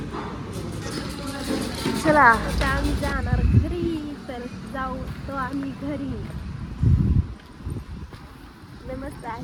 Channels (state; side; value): identical; both; correlation 1.00